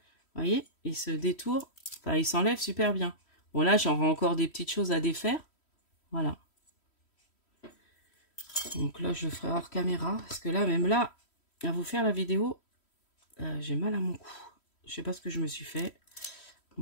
Vous voyez, il se détourne. Enfin, il s'enlève super bien. Bon, là, j'aurai encore des petites choses à défaire. Voilà. Donc là, je le ferai hors caméra. Parce que là, même là, à vous faire la vidéo, j'ai mal à mon cou. Je sais pas ce que je me suis fait.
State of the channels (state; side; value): late; right; 3.1 ms